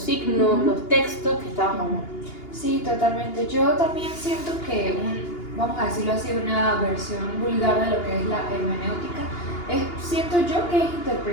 signos, los textos que estábamos hablando. Sí, totalmente. Yo también siento que vamos a decirlo así, una versión vulgar de lo que es la hermenéutica, siento yo que es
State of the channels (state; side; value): late; right; 2.8 ms